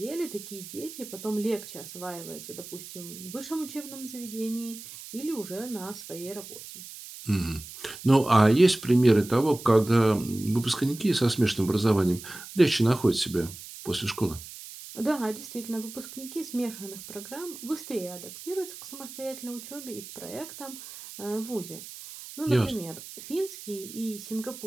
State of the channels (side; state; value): right; noise; hiss, 14 dB below the sound